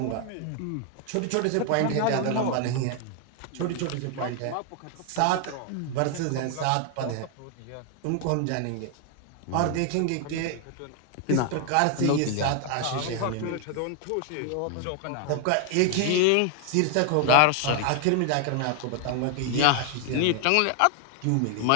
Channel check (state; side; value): different; both; correlation 0.00